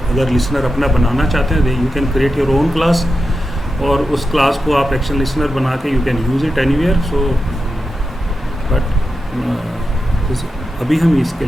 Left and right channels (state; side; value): normal; both; correlation 0.90